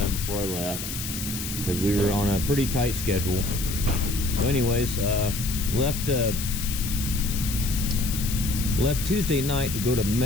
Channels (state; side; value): noise; left; hiss, 6 dB below the sound